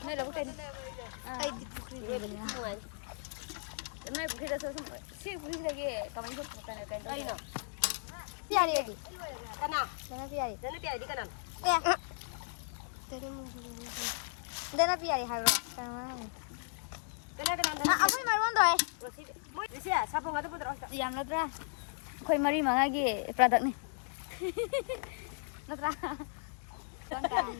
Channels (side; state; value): right; silent; digital silence